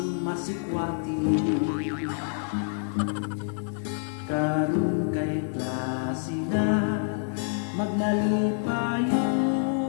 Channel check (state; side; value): silent; right; digital silence